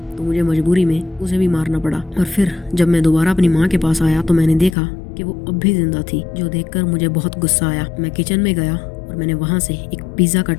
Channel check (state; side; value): drops out; right; at 4.8 s